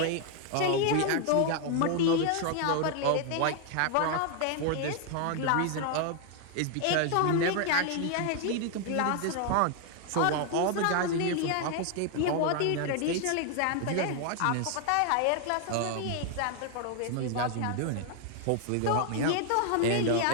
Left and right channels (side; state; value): both; different; correlation 0.00